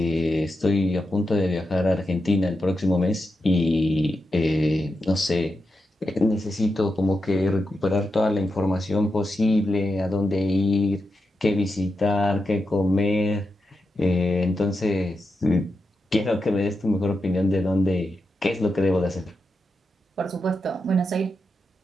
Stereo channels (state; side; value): normal; both; correlation 0.87